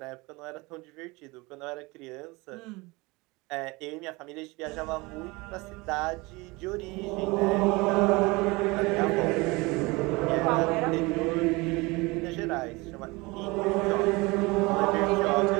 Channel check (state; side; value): quieter; left; 24.2 dB